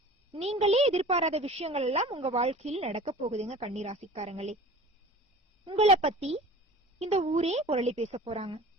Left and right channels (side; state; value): both; normal; correlation 0.41